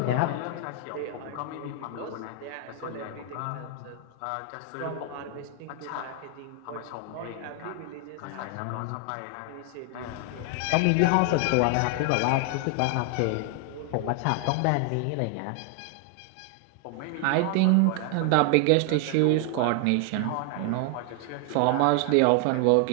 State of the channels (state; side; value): different; both; correlation 0.00